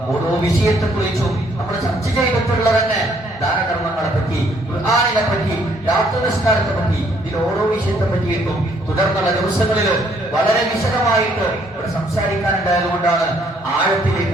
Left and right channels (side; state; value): both; normal; correlation 0.66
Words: ഓരോ വിഷയത്തെ കുറിച്ചും നമ്മൾ ചർച്ച ചെയ്തിട്ടുള്ള തന്നെ ദാനകർമ്മങ്ങളെ പറ്റി, ഖുർആനിനെ പറ്റി, രാത്രി നിസ്കാരത്തെ പറ്റി, ഇതിൽ ഓരോ വിഷയത്തെ പറ്റിയിട്ടും തുടർന്നുള്ള ദിവസങ്ങളിൽ വളരെ വിശദമായിട്ട് ഇവിടെ സംസാരിക്കാനുണ്ടായത് കൊണ്ടാണ് ആഴത്തിലേക്ക്